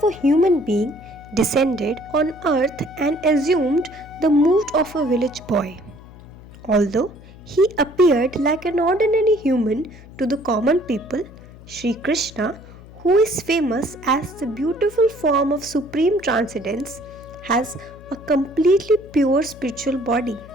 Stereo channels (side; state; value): left; noise; hum, 19 dB below the sound